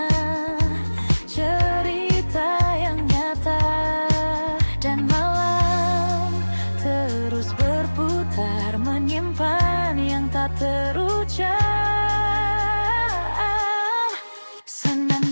cerita yang nyata. Dan malam terus berputar, menyimpan yang tak terucap.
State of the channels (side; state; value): both; inverted; correlation -1.00